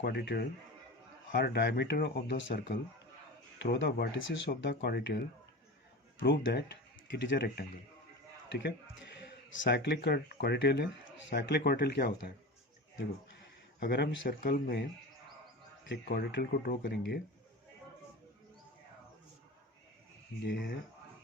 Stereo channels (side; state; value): both; normal; correlation 0.30